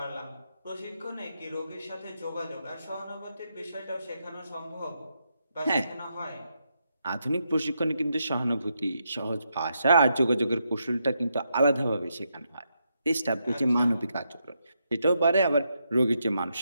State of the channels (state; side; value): inverted; both; correlation -0.82